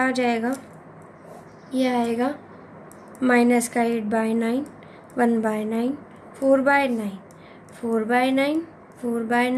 आ जाएगा, ये आएगा माइनस का 8/9 1/9 4/9 4/9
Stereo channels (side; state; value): both; identical; correlation 1.00